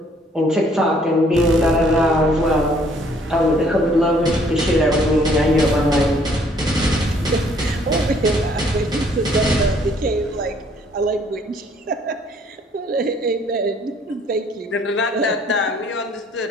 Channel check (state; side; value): normal; both; correlation 0.62